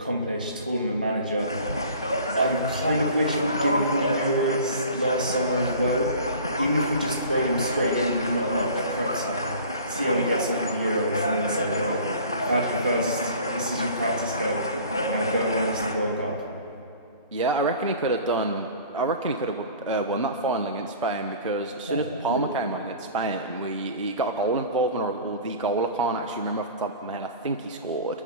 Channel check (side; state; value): both; inverted; correlation -0.44